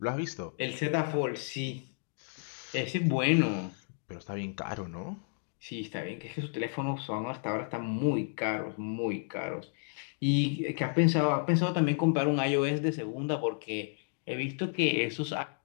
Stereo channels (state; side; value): silent; right; digital silence